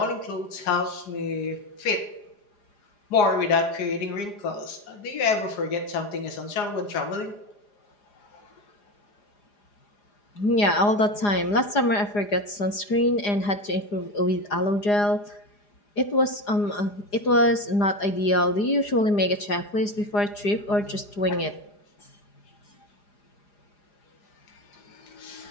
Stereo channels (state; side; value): late; right; 4.9 ms